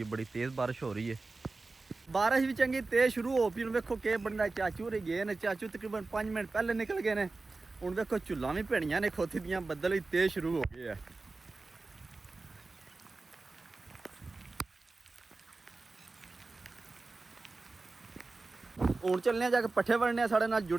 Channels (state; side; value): quieter; left; 3.6 dB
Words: बड़ी तेज़ बारिश हो रही है। बारिश भी चंगी तेज शुरू हो पी। वेखो के बनना, चाचू रे गए ने, चाचू तकरीबन 5 मिनट पहले निकल गए ने। हूँ देखो चुल्ला भी भेड़ियां ने खोती दियां, बदल भी तेज शुरू हो गए है। हूँ चलने जाके पट्ठे वड़ने, साढ़े नाल